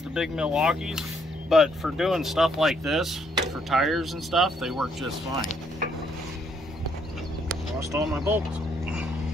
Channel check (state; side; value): normal; both; correlation 0.70